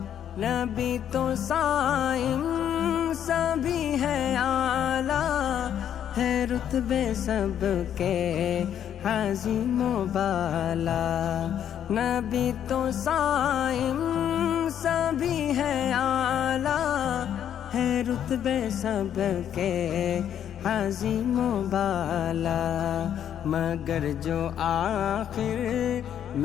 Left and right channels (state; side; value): quieter; right; 9.7 dB